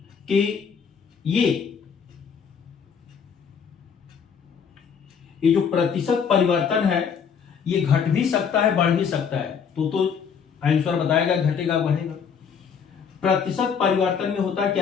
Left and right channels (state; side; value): quieter; right; 6.8 dB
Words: कि ये जो प्रतिशत परिवर्तन है ये घट भी सकता है, बढ़ भी सकता है। तो आंसर बताएगा घटेगा बढ़ेगा। प्रतिशत परिवर्तन में होता